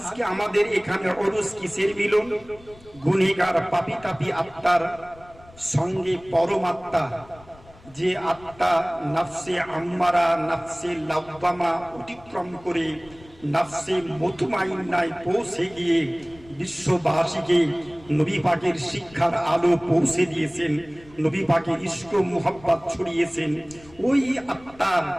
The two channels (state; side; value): noise; left; rumble, 24 dB below the sound